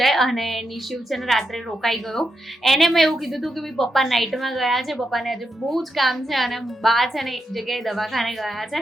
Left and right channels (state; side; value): normal; both; correlation 0.84